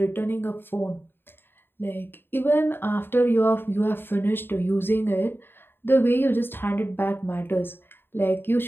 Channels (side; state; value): right; late; 0.10 ms